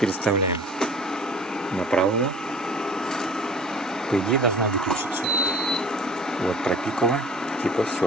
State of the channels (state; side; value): normal; both; correlation 0.46